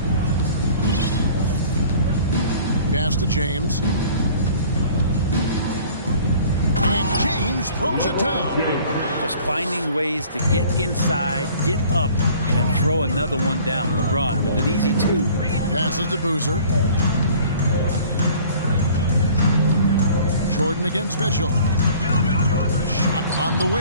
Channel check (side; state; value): both; inverted; correlation -0.50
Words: Pass to James. And James throws it down. Just finding ways to get inside, get up, and throw another one down. LeBron with an easy 2. Passes to Boozer. Jordan against Mitchell. Shot on the